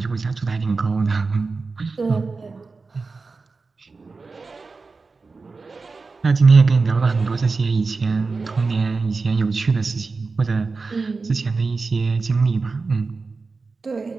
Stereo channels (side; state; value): left; quieter; 4.2 dB